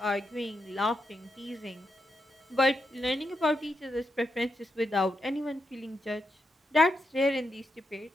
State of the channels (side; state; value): both; normal; correlation 0.84